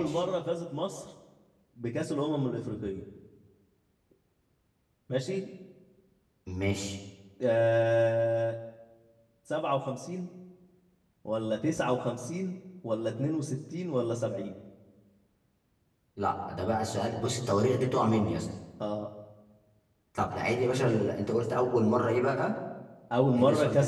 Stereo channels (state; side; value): identical; both; correlation 1.00